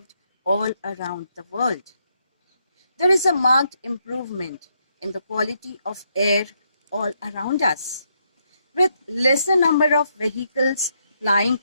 all around the world. There is a marked improvement in the quality of air all around us. With lesser number of vehicles plying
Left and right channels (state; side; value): inverted; both; correlation -0.77